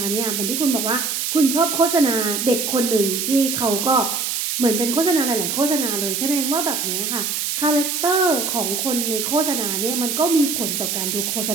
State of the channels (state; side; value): noise; right; hiss, 1 dB below the sound